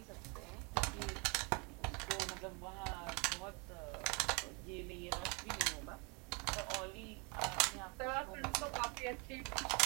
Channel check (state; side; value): quieter; left; 32.0 dB